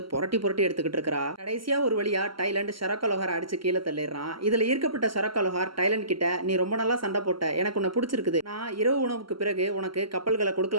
புரட்டி புரட்டி எடுத்துக்கிட்டு இருக்கா. கடைசியா ஒரு வழியா டைலண்ட் ஷரக்கா லோஹார் அடிச்சு கீழே தள்ளிடுறான். இதுல ஈர்க்கப்பட்ட ஷரக்கா லோஹார் டைலண்ட் கிட்ட, நீ ரொம்ப நல்லா சண்டை போட்ட, எனக்கு உன்னை பிடிச்சிருக்குது, நான் இரவு உணவுக்கு பிறகு உனக்கு கப்பல்களை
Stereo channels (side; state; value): left; late; 0.74 ms